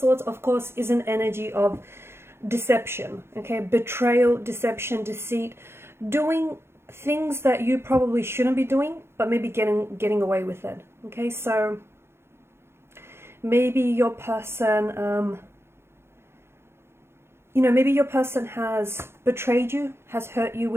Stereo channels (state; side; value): late; left; 0.12 ms